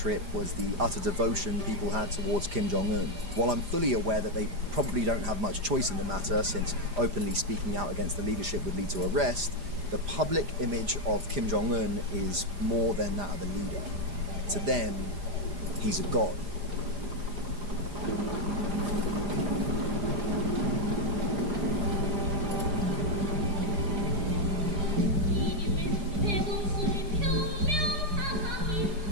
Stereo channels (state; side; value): late; left; 4.9 ms